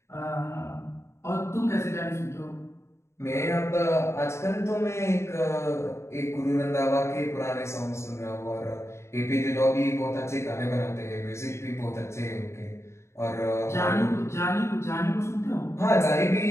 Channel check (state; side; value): late; right; 0.13 ms